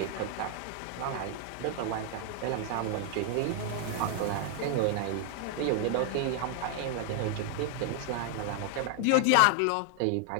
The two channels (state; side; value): different; both; correlation 0.00